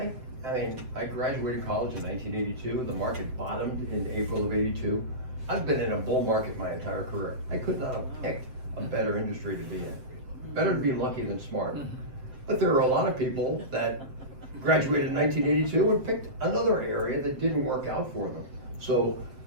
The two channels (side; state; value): left; late; 7.8 ms